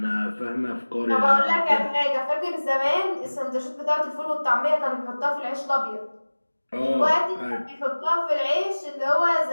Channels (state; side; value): inverted; both; correlation -1.00